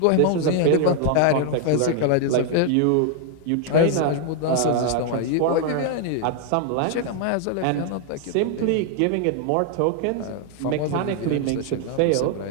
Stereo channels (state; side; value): different; both; correlation 0.00